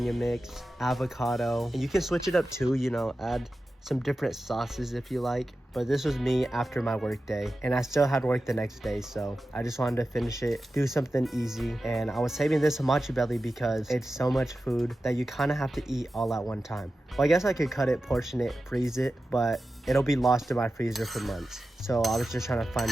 mix, avocado. And you can switch it up too, you know, add some different sauces if you like. But this was me after my work day, and I still had work the next day, so I just wanted to finish it, do something easy. And I was saving this hamachi belly because it's so much food that you kind of have to eat all at one time. Well, I guess I could cut it, portion it, freeze it, but it'll be lost in my freezer for months. So I was just trying to find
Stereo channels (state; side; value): normal; both; correlation 0.93